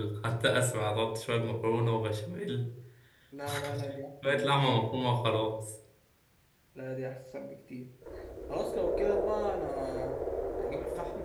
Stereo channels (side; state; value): both; identical; correlation 1.00